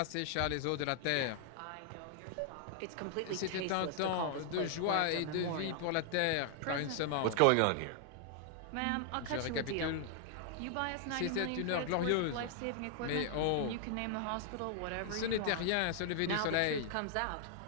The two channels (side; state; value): both; different; correlation 0.00